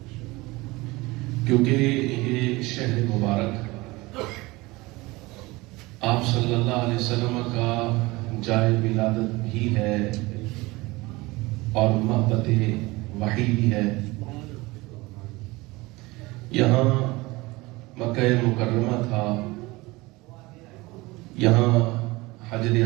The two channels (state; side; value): quieter; left; 21.9 dB